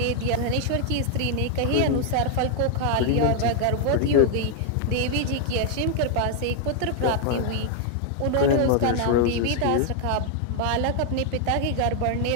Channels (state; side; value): different; both; correlation 0.00